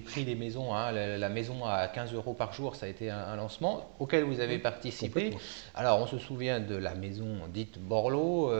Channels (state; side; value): silent; left; 54 dB below the other